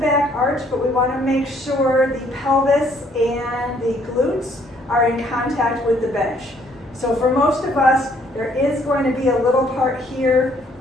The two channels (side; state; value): both; normal; correlation 0.65